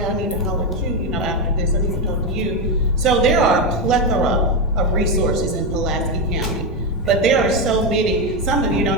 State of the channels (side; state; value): both; normal; correlation 0.09